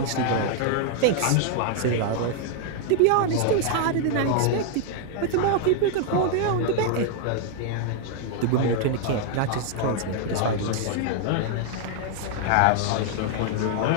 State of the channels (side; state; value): both; different; correlation 0.00